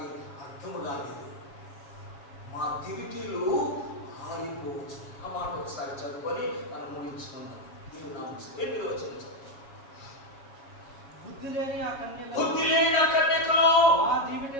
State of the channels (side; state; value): right; late; 7.2 ms